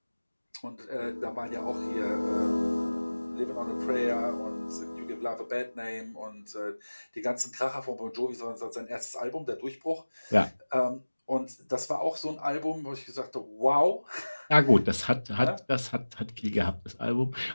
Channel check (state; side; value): inverted; both; correlation -1.00